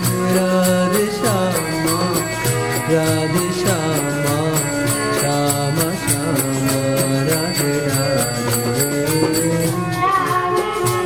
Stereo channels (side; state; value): both; identical; correlation 1.00